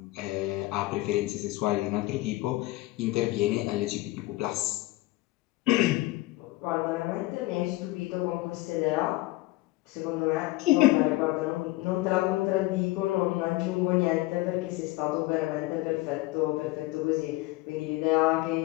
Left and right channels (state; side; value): quieter; right; 19.4 dB